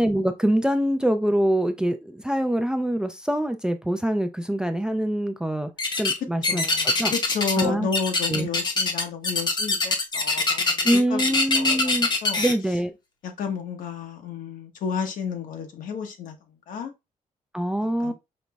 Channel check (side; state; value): both; normal; correlation 0.57